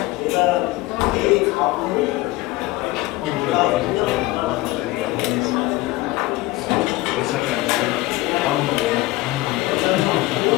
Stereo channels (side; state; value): right; quieter; 18.9 dB